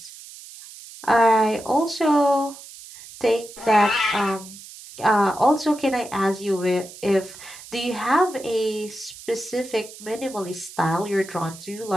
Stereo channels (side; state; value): right; noise; hiss, 17 dB below the sound